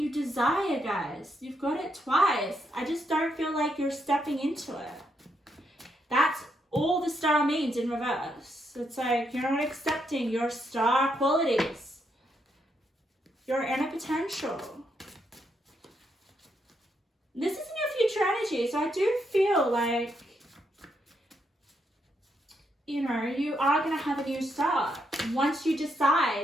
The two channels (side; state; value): both; normal; correlation 0.78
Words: desire, guys. You've got it twice. I just don't feel like you're stepping into it. That's all the star means in reverse. It's like you're not accepting your star qualities, your inner potential. This isn't your future energy, so I do feel like, you know, you are going to have a new start once you